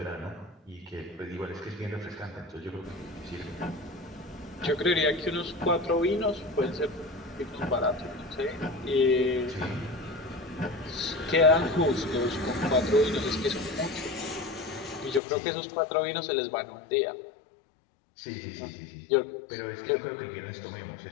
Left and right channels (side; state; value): right; drops out; at 15.2 s